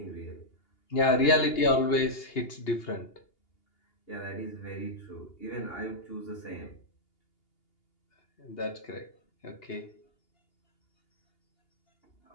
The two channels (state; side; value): late; right; 2.8 ms